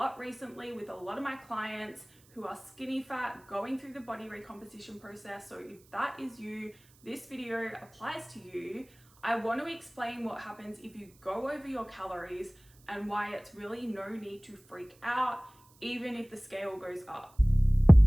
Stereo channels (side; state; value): right; noise; hiss, 29 dB below the sound